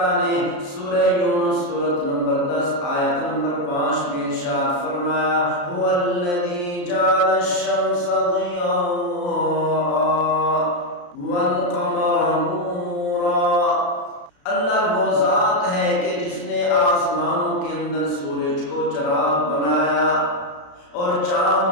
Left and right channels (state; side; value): late; right; 34 ms